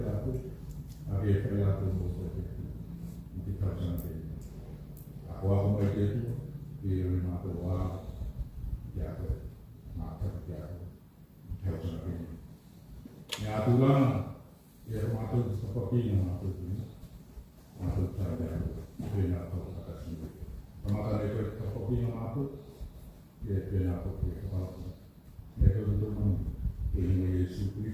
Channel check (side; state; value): both; identical; correlation 1.00